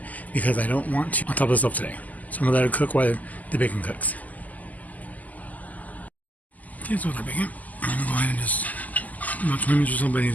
because I don't want to on top of the stove today. So I'm gonna let it cook while the bacon cooks. Okay, so with our bacon, I'm gonna go ahead and just about 20 minutes or so, but I need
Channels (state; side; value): late; right; 0.079 ms